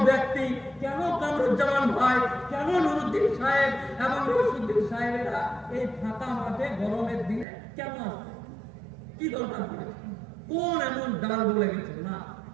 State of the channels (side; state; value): left; drops out; at 7.5 s